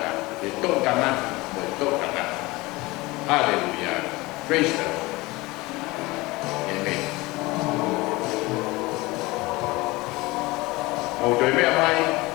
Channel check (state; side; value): quieter; right; 21.7 dB